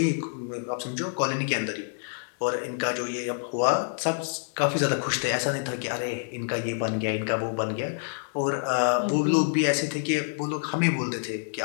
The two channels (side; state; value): right; silent; digital silence